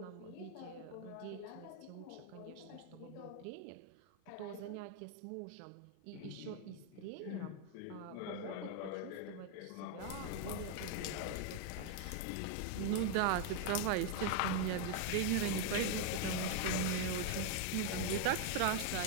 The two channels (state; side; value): different; both; correlation 0.01